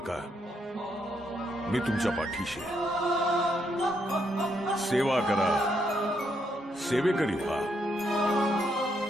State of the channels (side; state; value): both; normal; correlation 0.76